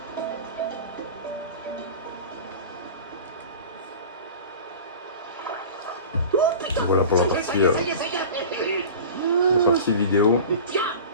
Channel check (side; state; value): both; inverted; correlation -0.36